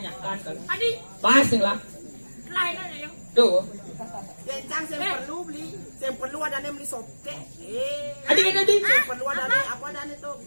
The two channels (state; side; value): inverted; both; correlation -1.00